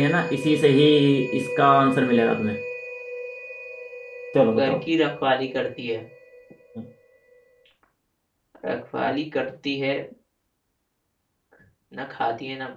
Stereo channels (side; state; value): both; identical; correlation 1.00